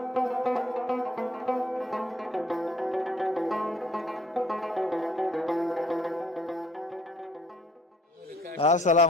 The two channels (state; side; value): normal; both; correlation 0.61